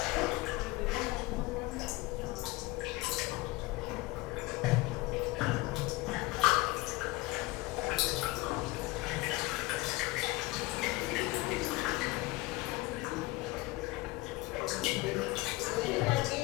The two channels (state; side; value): quieter; right; 20.6 dB